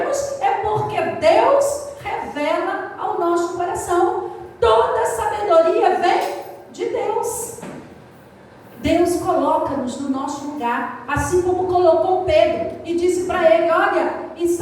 lugar, assim como colocou Pedro e disse para ele: olha, e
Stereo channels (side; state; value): both; identical; correlation 1.00